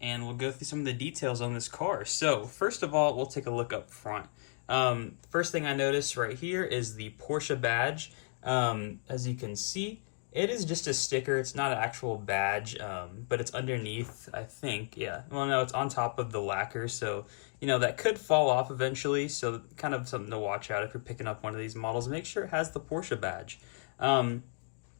and we'll go through some of the details on this car. So first of all, we'll take a look up front. First thing I noticed right here is the Porsche badge. As you can see, it is just a sticker. It's not an actual badge, but it's underneath, I think. Yeah. Well, no, it's on top of the lacquer, so, you know, that could fall off eventually. So kind of something to watch out if you're picking up one of these models. Make sure it has the Porsche badge.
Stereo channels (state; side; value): silent; right; 55 dB below the other